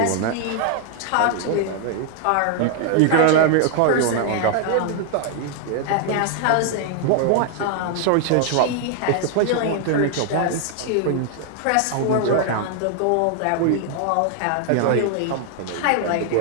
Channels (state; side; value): different; both; correlation 0.00